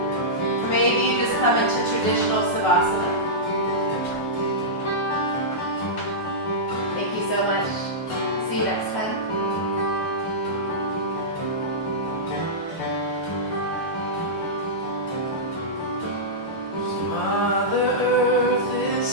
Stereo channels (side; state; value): right; late; 9.2 ms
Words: Or maybe you just come into traditional Savasana. Thank you so much. See you next time.